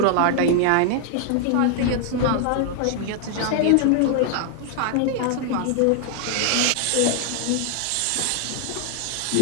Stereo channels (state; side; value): different; both; correlation 0.00